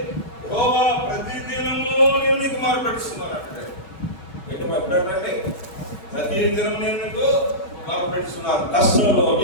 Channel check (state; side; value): late; right; 5.3 ms